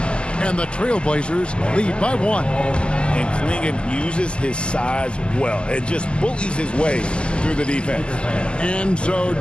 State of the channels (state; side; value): late; right; 0.050 ms